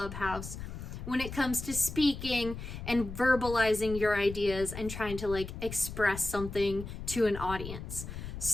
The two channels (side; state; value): left; noise; rumble, 9 dB below the sound